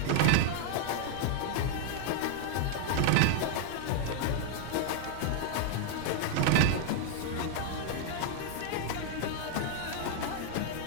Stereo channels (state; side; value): different; both; correlation 0.00